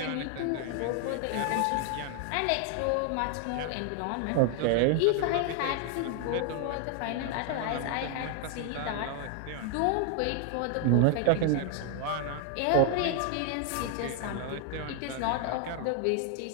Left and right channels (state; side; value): different; both; correlation 0.00